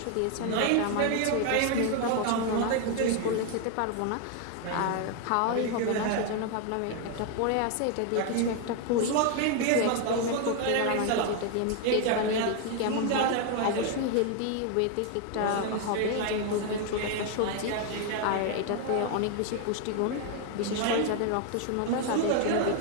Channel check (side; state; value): both; different; correlation 0.01